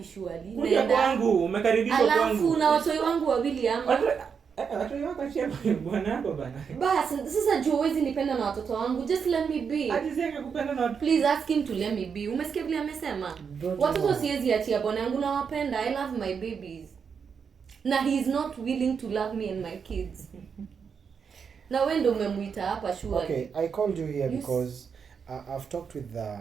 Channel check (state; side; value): quieter; left; 6.4 dB